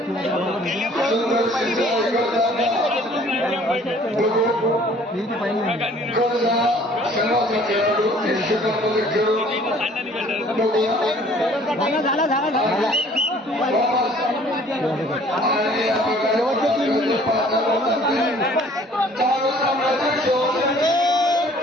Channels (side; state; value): both; normal; correlation 0.55